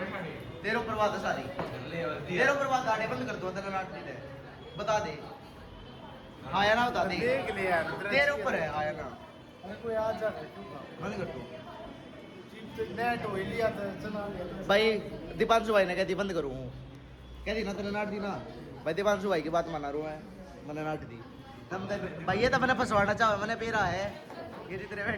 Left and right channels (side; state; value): both; identical; correlation 1.00